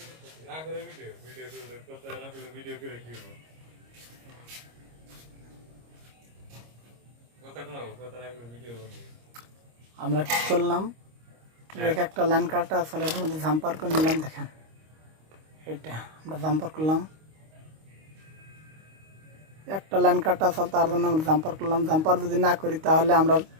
না করে ভিডিও করে করতে না করে ভিডিও করে কি হবে কথা কোন কথা না করে ভিডিও করব। আমরা কি করলাম, ট্র্যাক একটা লাইন কাটা আসলে এর মধ্যে জাম্পার করে নিলাম। দেখেন এটা আমরা জাম্পার করলাম, একটা লাইন কাটা আসল তার জন্য আমরা জাম্পার করলাম। জাম্পার যদি না করি তাহলে আমরা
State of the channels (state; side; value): late; left; 25 ms